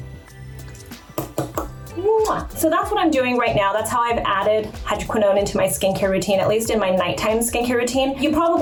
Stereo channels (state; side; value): identical; both; correlation 1.00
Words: So that's what I'm doing right now. That's how I've added hydroquinone into my skincare routine, at least in my nighttime skincare routine. You